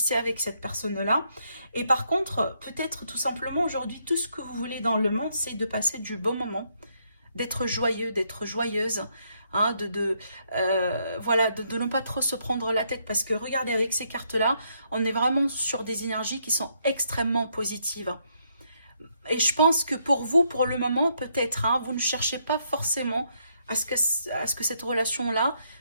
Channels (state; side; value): inverted; both; correlation -0.74